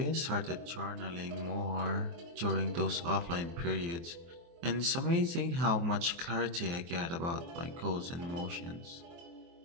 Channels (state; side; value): late; left; 23 ms